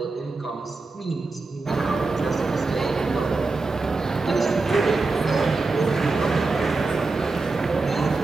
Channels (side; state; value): left; quieter; 3.7 dB